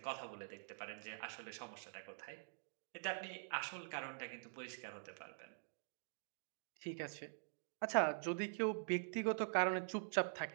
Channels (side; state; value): left; silent; digital silence